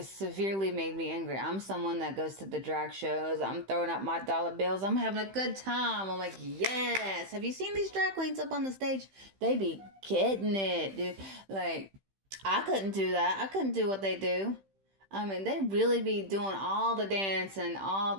severely made me angry. I'm someone that goes to the drag shows. I'm throwing up my dollar bills. I'm having a good time. I'm like, yes. Have you seen these drag queens up on the stage? They be getting it, dude. Like, I couldn't do that. I couldn't do what they do. I mean, they really be doing all the dancing, all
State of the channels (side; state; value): left; late; 15 ms